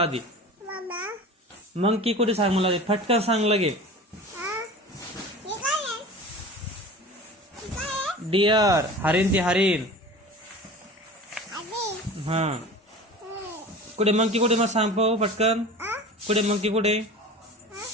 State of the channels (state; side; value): normal; both; correlation 0.37